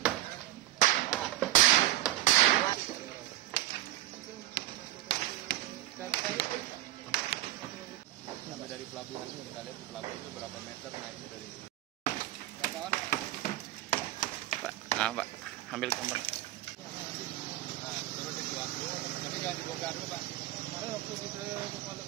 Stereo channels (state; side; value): quieter; left; 15.6 dB